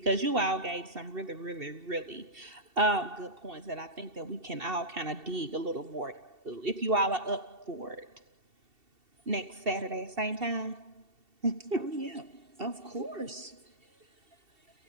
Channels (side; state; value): left; late; 2.7 ms